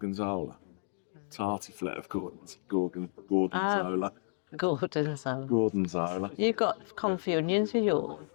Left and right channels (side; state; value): right; silent; digital silence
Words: Tartiflette of gorgonzola. Gorgonzola. You've got confit onions with yours?